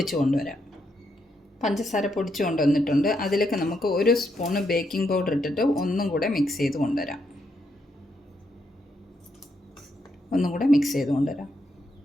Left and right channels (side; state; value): both; normal; correlation 0.79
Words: കൊണ്ടുവരാം. പഞ്ചസാര പൊടിച്ചു കൊണ്ടുവന്നിട്ടുണ്ട്. അതിലേക്ക് നമുക്ക് 1 സ്പൂണ് ബേക്കിംഗ് പൗഡർ ഇട്ടിട്ട് ഒന്നും കൂടെ മിക്സ് ചെയ്ത് കൊണ്ടുവരാം.